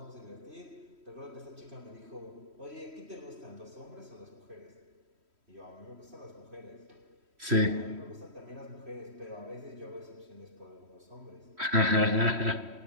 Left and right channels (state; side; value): late; left; 3.1 ms